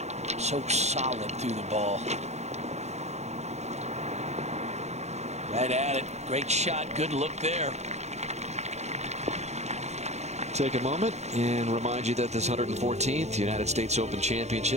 So solid through the ball. Right at it. Great shot. Good look there. Take a moment and remind you that this 114th United States Open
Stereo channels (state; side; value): late; left; 0.32 ms